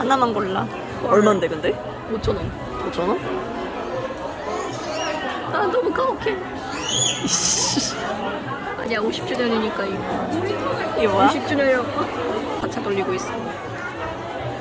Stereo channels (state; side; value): identical; both; correlation 1.00